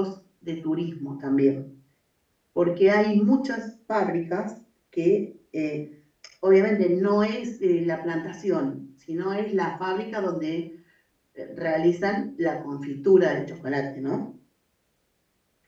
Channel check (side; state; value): both; identical; correlation 1.00